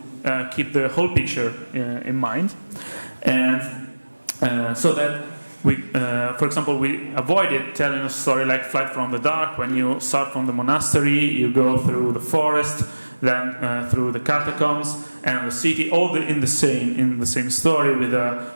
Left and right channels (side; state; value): both; inverted; correlation -1.00